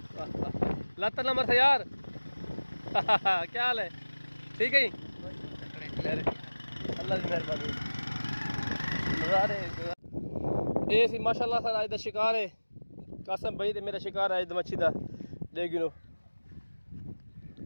लाता नंबर था यार क्या हाल है ठीक है अल्लाह की मेहरबानी नज़ारे ये सी माशाल्लाह सर अज दा शिकार है कासम भाई ते मेरा शिकार है अज दा मच्छी दा देखनो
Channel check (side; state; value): both; inverted; correlation -1.00